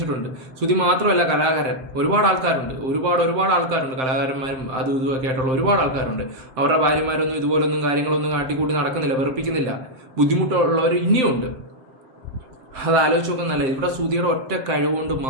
സുധി മാത്രമല്ല, കലാകാരൻ ഒരുപാട് ആൾക്കാരുണ്ട്. ഒരുപാട് ആൾക്കാരുണ്ട്, കലാകാരന്മാരും അതും ഇതുമൊക്കെ ആയിട്ടുള്ള ഒരുപാട് ആൾക്കാരുണ്ട്. അവരുടെ ഭാര്യമാരൊന്നും ഇതുപോലൊന്നും കാര്യങ്ങളൊന്നും കാട്ടിക്കൂട്ടി നടക്കുന്നില്ല, വെറുപ്പിക്കുന്നില്ല. ബുദ്ധിമുട്ടുള്ളവർ ഇനിയുണ്ട്. അത് ആലോചിച്ച് നോക്കുന്നല്ല. ഇവിടെ സുധിയുടെ ഒറ്റ കഴിവുകൊണ്ട്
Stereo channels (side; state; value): left; late; 7.7 ms